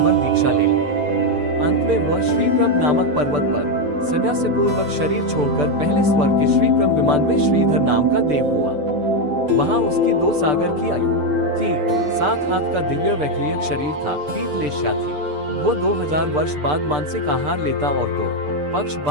दीक्षा ले ली। अंत में वह श्रीप्रभ नामक पर्वत पर संन्यास पूर्वक शरीर छोड़कर पहले स्वर्ग के श्रीप्रभ विमान में श्रीधर नाम का देव हुआ। वहां उसकी 2 सागर की आयु थी, 7 हाथ का दिव्य वैक्रियक शरीर था, पीठ लेश्या थी। वो 2000 वर्ष बाद मानसिक आहार लेता और 2 पक्ष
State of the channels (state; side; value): late; left; 6.8 ms